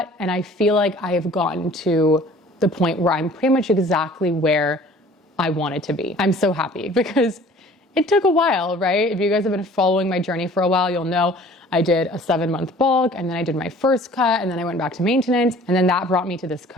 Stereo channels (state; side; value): normal; both; correlation 0.50